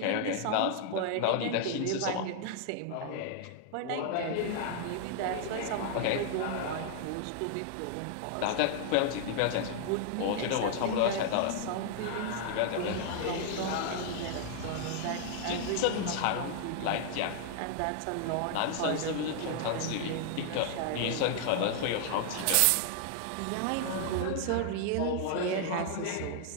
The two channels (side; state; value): both; different; correlation -0.01